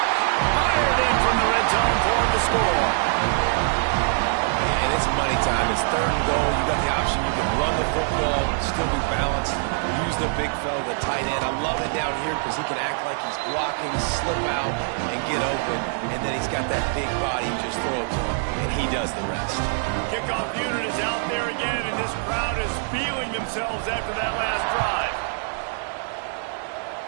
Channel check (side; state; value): left; silent; 60 dB below the other